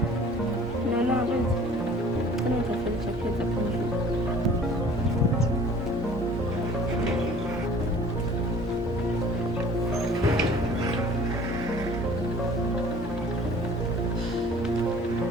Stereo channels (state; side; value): normal; both; correlation 0.50